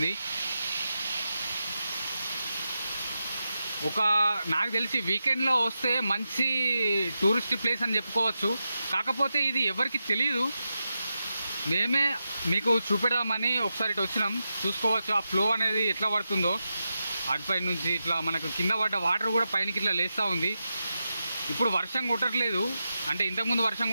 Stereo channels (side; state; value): both; inverted; correlation -0.89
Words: నాకు తెలిసి వీకెండ్లో వస్తే మంచి టూరిస్ట్ ప్లేస్ అని చెప్పుకోవచ్చు. కాకపోతే ఇది ఎవరికి తెలియదు, మేమే మీకు చూపెడదామని ఒకసారి ఇటు వచ్చినాం. చూసుకోవచ్చు ఆ ఫ్లో అనేది ఎట్లా పడుతుందో. అటుపై నుంచి ఇట్లా మనకు కింద పడ్డ వాటర్ కూడా పైనకి ఇట్లా లేస్తూ ఉంది. ఇప్పుడు వర్షం కొట్టట్లేదు, అంటే ఇంతకుముందు వర్షం